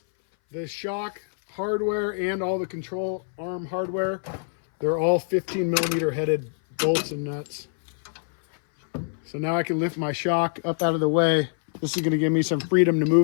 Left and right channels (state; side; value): silent; right; 59 dB below the other